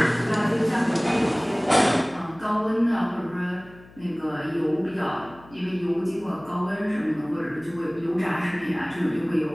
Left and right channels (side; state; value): left; noise; hum, 23 dB below the sound